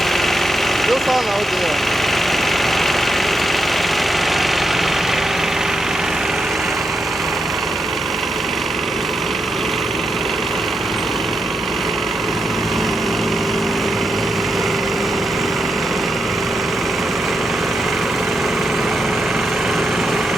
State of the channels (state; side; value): normal; both; correlation 0.84